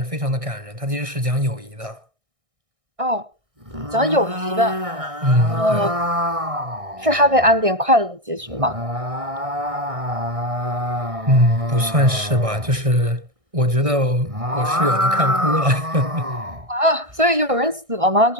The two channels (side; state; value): left; late; 1.6 ms